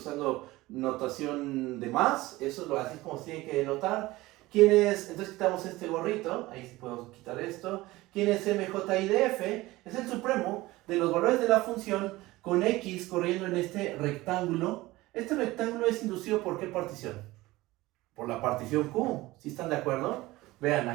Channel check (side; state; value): left; quieter; 19.0 dB